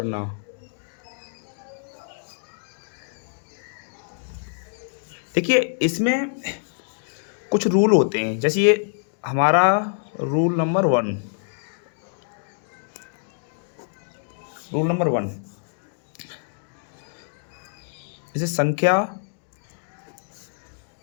देखिए इसमें कुछ रूल होते हैं, जैसे ये हमारा रूल नंबर वन, जैसे संख्या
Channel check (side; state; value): right; silent; digital silence